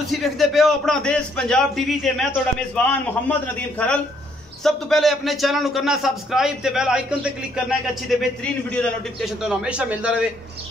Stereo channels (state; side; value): normal; both; correlation 0.69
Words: देखते पे हो अपना देश पंजाब टीवी ते मैं तोड़ा मेजबान मोहम्मद नदीम खरल। सब तो पहले अपने चैनल को करना सब्सक्राइब ते बेल आइकन ते क्लिक करना है अच्छी ते बेहतरीन वीडियो का नोटिफिकेशन तो हमेशा मिलता रहे।